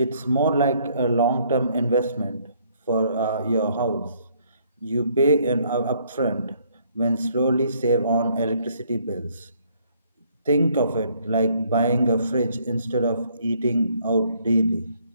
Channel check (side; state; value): both; inverted; correlation -0.66